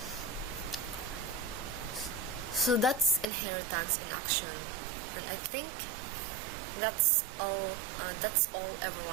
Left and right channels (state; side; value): drops out; left; at 3.2 s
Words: that's inheritance in action, and I think that's all